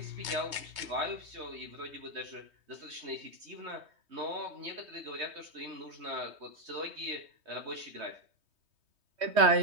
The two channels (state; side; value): late; left; 3.2 ms